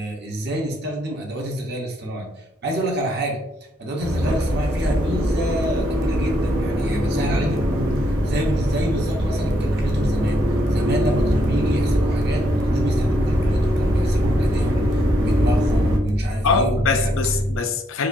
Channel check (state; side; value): normal; both; correlation 0.75